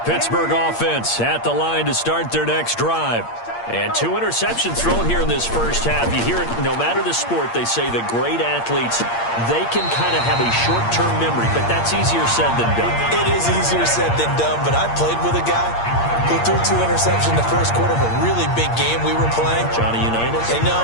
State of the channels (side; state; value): right; late; 8.6 ms